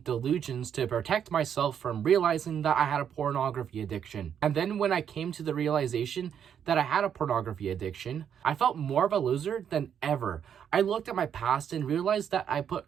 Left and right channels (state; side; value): quieter; left; 8.5 dB